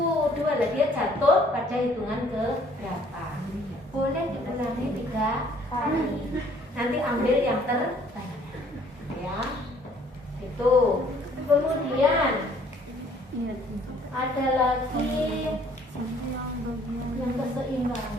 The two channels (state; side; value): normal; both; correlation 0.60